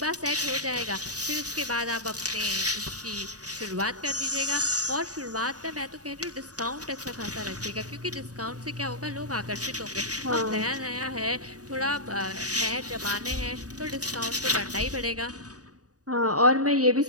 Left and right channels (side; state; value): left; late; 0.67 ms